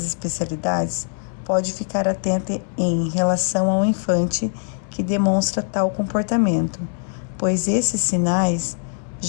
especialidades, pode ficar atenta em relação ao infante que demonstra tal comportamento, pois esses sinais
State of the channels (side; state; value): right; silent; 64 dB below the other